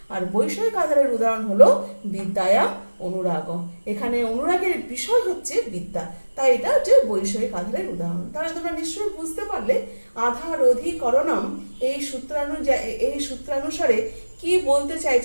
আর বৈষয়িক আধারের উদাহরণ হলো বিদ্যায়াম অনুরাগ, এখানে অনুরাগের বিষয় হচ্ছে বিদ্যা, তাই এটা হচ্ছে বৈষয়িক আধারের উদাহরণ। তাহলে তোমরা নিশ্চয়ই বুঝতে পারলে আধার অধিকরণম এই সূত্রানুসারে কি বলতে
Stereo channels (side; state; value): both; inverted; correlation -1.00